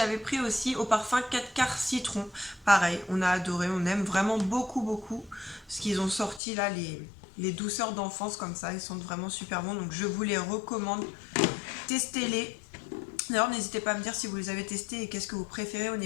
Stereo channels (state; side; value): drops out; right; at 6.4 s